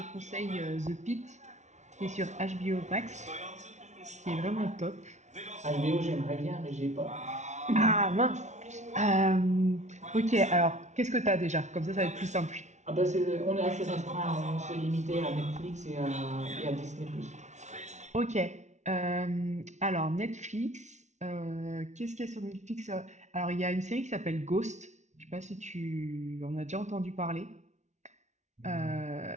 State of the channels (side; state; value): left; late; 0.33 ms